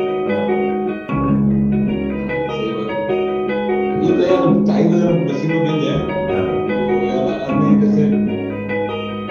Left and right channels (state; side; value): identical; both; correlation 1.00